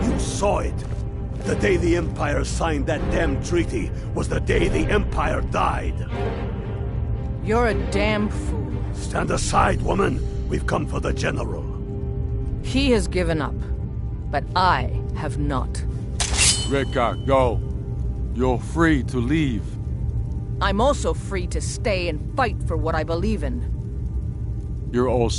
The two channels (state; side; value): identical; both; correlation 1.00